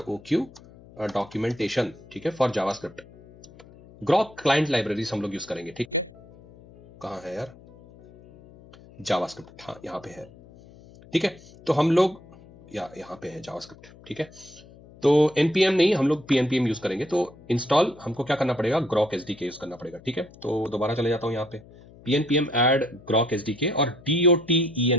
डॉक्यूमेंटेशन, ठीक है, for JavaScript. Grok client libraries हम लोग यूज करेंगे, ठीक। कहां है यार जावास्क्रिप्ट, हाँ यहाँ पे है, ठीक है। तो हम लोग यहाँ पे है जावास्क्रिप्ट, ठीक है। तो npm नहीं, हम लोग pnpm यूज करेंगे। तो इंस्टॉल हमको क्या करना पड़ेगा, ग्रॉक SDK यूज करना पड़ेगा, ठीक है। तो दोबारा चले जाता हूं यहाँ पे pnpm ऐड ग्रॉक SDK और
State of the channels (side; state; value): left; noise; hum, 22 dB below the sound